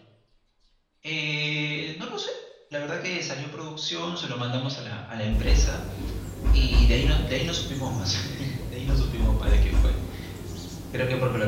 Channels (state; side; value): identical; both; correlation 1.00